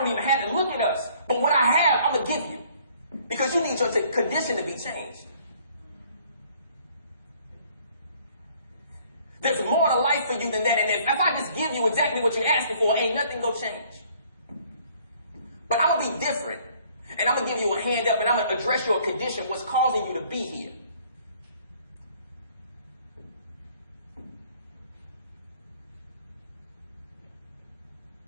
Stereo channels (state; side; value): inverted; both; correlation -0.59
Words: even have to look at us. But what I have, I'm going to give you, because you need your condition to be changed. There's more to life for you than that, and if I just give you exactly what you're asking for, ain't nothing going to change. But I'm going to be different, and I'm going to give you a hand up, and I'm going to address your condition, what's causing you to be here.